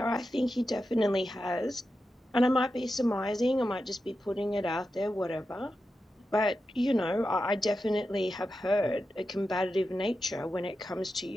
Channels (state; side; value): normal; both; correlation 0.90